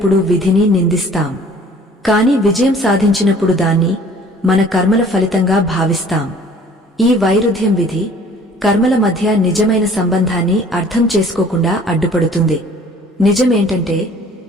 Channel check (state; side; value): normal; both; correlation 0.52